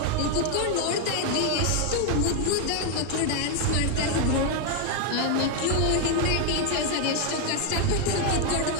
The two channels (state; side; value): different; both; correlation 0.01